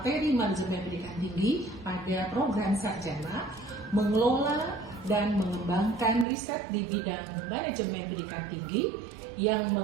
manajemen pendidikan tinggi pada program sarjana, mengelola dan mengembangkan riset di bidang manajemen pendidikan tinggi yang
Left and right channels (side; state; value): left; drops out; at 6.2 s